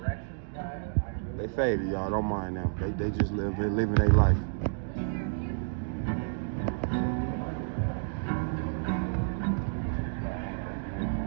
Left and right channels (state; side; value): silent; left; digital silence